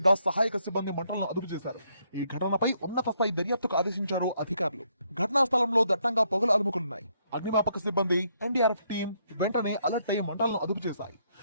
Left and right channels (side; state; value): both; inverted; correlation -0.73